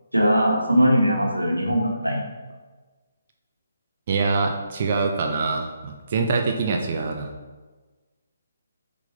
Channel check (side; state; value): both; inverted; correlation -0.81